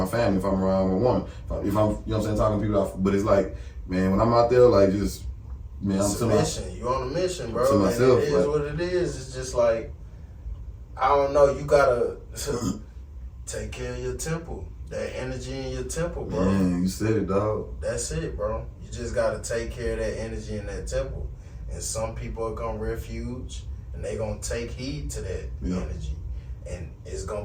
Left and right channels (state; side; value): identical; both; correlation 1.00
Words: family, if I'm around a woman, if I'm, you know what I'm saying, talking to people but it's like, man, when I'm out there, like just, man, it's I'm a mission. You on a mission, bro. To myself, and it is what it is. It's just like, I don't know, you gotta take care of your temple. That energy in your temple, bro. Man, you said it, dog. That's it, bro. You just gotta take care of that energy in that temple. And some people are gonna refuge and they gonna take heed to that energy. And it's